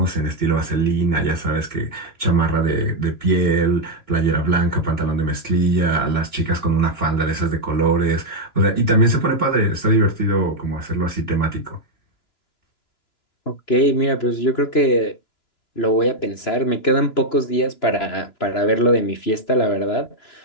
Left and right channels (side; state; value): right; late; 2.9 ms